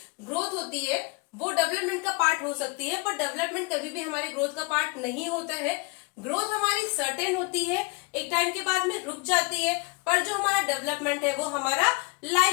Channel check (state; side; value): quieter; right; 28.5 dB